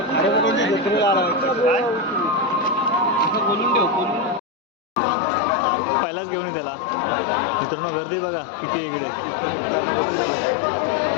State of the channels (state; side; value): drops out; right; at 4.4 s